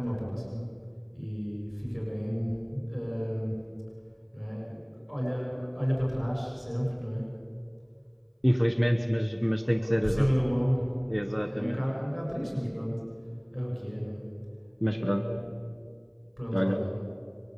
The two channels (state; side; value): identical; both; correlation 1.00